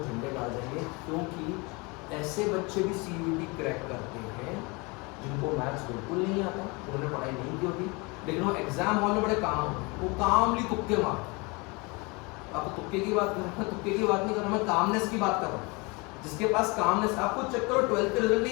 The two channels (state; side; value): quieter; right; 27.6 dB